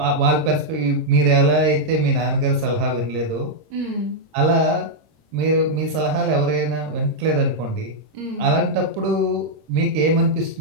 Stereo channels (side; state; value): left; late; 26 ms